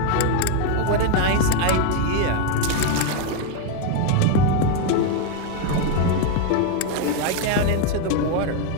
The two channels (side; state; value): both; different; correlation 0.01